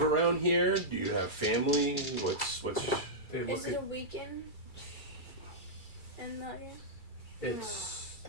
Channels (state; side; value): late; right; 2.3 ms